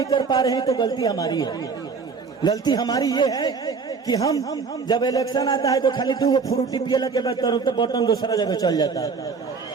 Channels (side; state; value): left; quieter; 5.1 dB